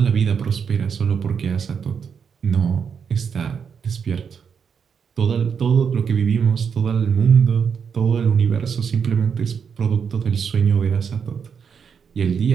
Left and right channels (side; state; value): left; quieter; 6.7 dB